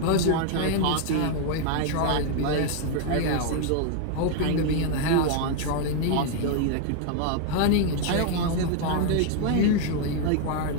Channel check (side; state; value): both; different; correlation 0.00